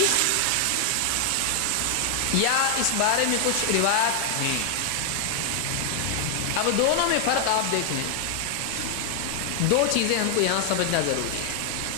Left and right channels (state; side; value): different; both; correlation 0.00